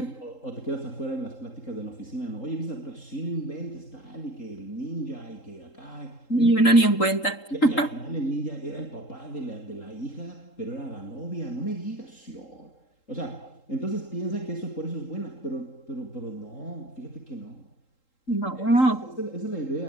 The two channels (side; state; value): right; late; 3.8 ms